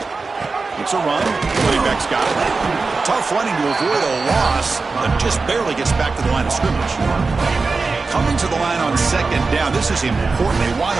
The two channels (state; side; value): quieter; left; 4.1 dB